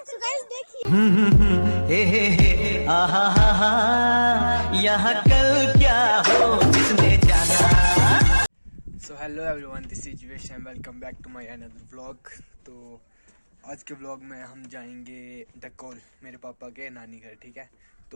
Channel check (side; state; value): both; inverted; correlation -1.00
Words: सो गाइस देखिए, यहाँ कल क्या हो जिसने जाना। So hello everyone, this is Vish and welcome back to my another vlog. तो आज के व्लॉग में हम जाएंगे डकोल, मेरे पापा के नानी घर। ठीक है,